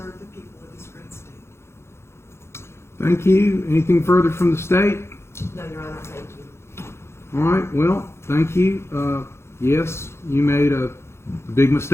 the people of this great state. Thank you. Anything further from the state? No, Your Honor, thank you. All right, well, thank you. Yes, you made a big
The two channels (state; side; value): late; right; 0.13 ms